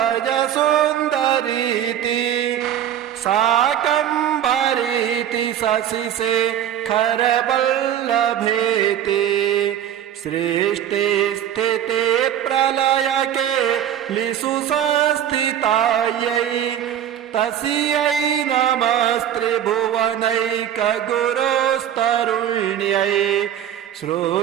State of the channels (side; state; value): left; quieter; 10.4 dB